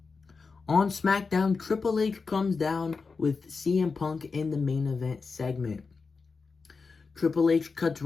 On SmackDown, Triple H comes down with CM Punk in the main event segment. Triple H cuts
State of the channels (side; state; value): right; quieter; 4.6 dB